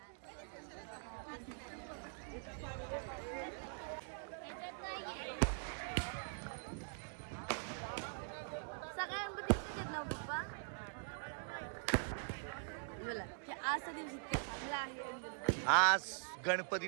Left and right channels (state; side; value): silent; left; digital silence